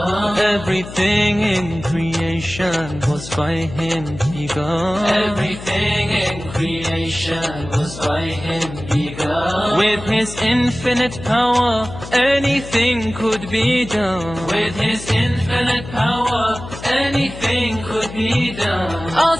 Everything in creation was by Him begun. Everything in creation was by Him begun. With His infinite power, anything could be done. With His infinite power, anything could be done.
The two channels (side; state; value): left; noise; hum, 12 dB below the sound